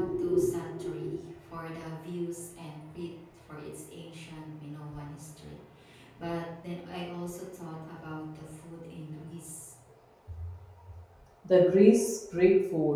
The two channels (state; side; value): identical; both; correlation 1.00